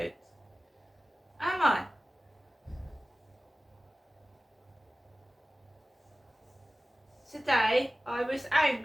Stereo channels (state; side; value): normal; both; correlation 0.97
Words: Am I? Today I was